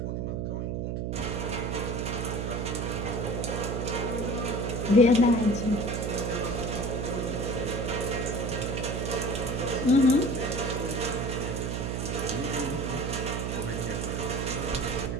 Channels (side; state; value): right; noise; hum, 1 dB below the sound